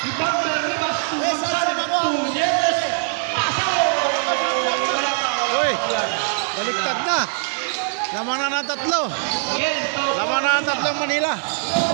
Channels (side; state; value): left; silent; digital silence